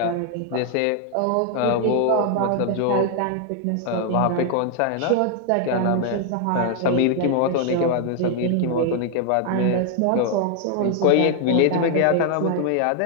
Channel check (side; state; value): both; different; correlation 0.00